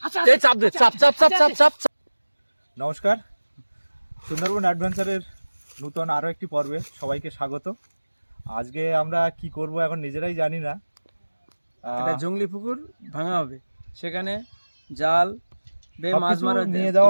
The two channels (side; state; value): both; inverted; correlation -1.00